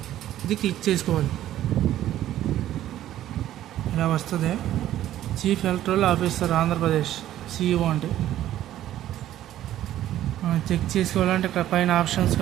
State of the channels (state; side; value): quieter; left; 12.8 dB